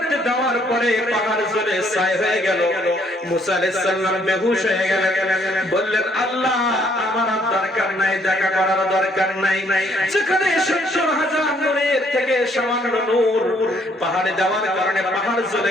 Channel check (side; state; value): both; normal; correlation 0.67